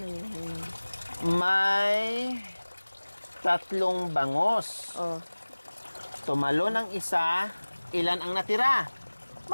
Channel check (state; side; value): inverted; both; correlation -1.00